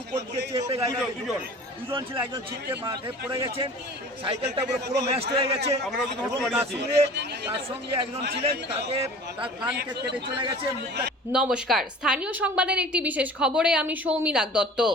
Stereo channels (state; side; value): normal; both; correlation 0.43